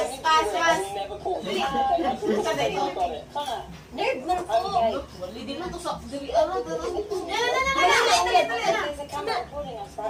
Nerve man po. Wali din lang to sa...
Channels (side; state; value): both; identical; correlation 1.00